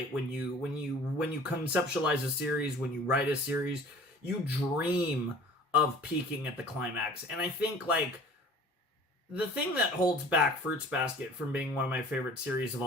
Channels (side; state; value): both; normal; correlation 0.46